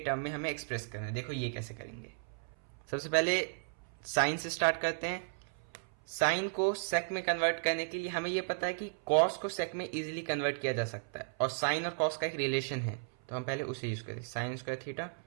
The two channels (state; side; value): silent; left; 55 dB below the other